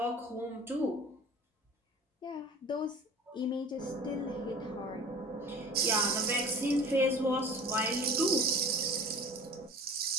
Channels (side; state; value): both; normal; correlation 0.41